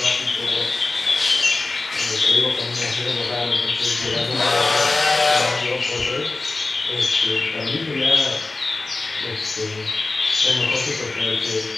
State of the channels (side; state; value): right; quieter; 3.4 dB